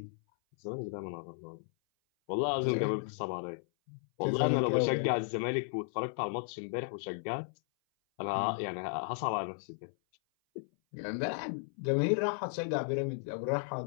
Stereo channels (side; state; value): right; silent; 55 dB below the other